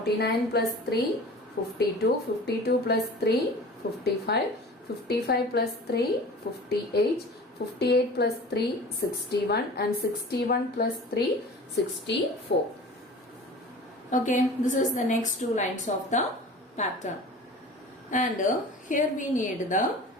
plus 3, 52, 52 plus 3, 55, 55 plus 3, 58, 58 plus 3, 61, and 61 plus 3, 64. Okay, this is the next two lines of the pattern. And here we need the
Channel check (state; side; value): normal; both; correlation 0.40